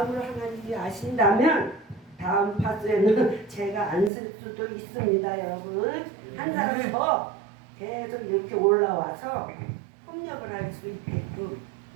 하나님이 아신다면 다음 파스에는 제가 안 쓸 수도 있습니다. 여러분 한 사람 더 계속 이렇게 올라와서 협력을 할 수 있게끔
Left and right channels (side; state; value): left; drops out; at 4.1 s